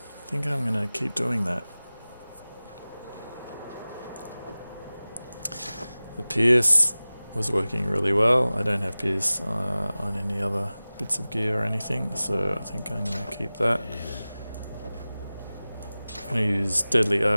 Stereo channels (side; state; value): both; inverted; correlation -0.98